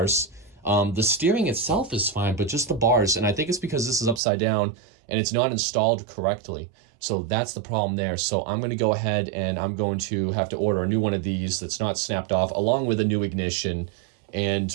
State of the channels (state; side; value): drops out; left; at 4.2 s